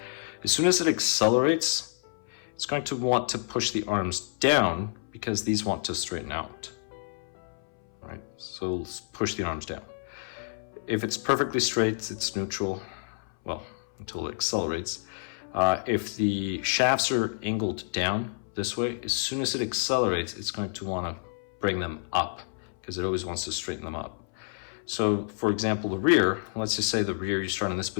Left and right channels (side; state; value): right; silent; 59 dB below the other